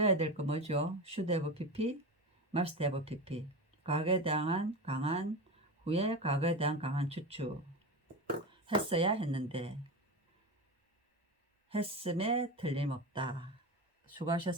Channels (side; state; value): both; normal; correlation 0.23